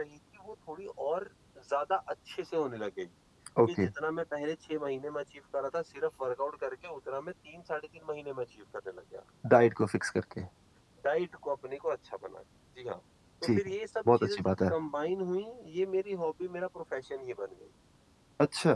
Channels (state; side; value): identical; both; correlation 1.00